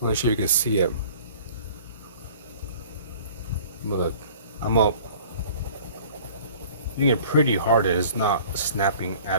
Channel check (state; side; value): inverted; both; correlation -0.48